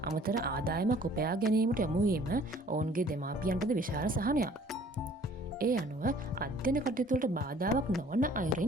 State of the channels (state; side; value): normal; both; correlation 0.54